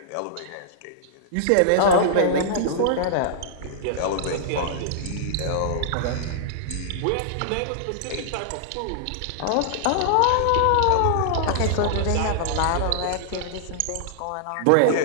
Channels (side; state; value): both; different; correlation -0.01